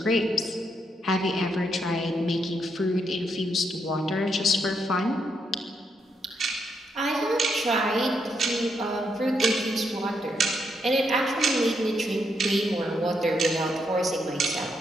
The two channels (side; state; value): both; normal; correlation 0.78